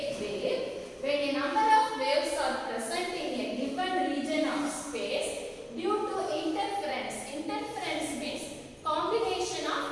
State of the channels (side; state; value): both; identical; correlation 1.00